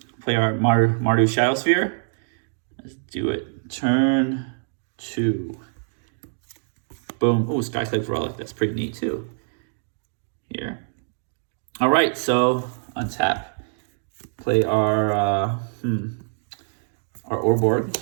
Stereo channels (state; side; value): silent; left; digital silence